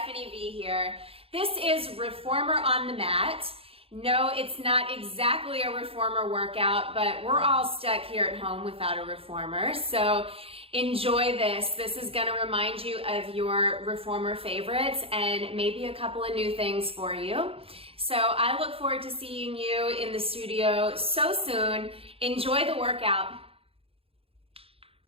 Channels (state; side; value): late; left; 0.27 ms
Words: V here. This is Reformer on the Mat. No, it's not exactly a reformer workout, but we're all stuck here at home without a reformer. So enjoy this. This is gonna remind you of your reformer favorites and maybe a couple of new things for you. So I look forward to seeing you in the studio so soon. Enjoy the workout.